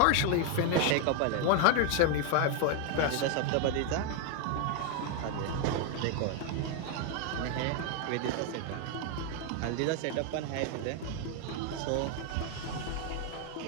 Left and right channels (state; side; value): different; both; correlation 0.01